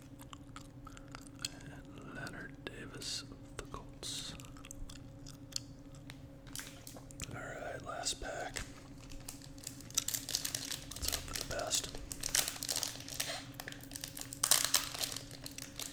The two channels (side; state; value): both; identical; correlation 1.00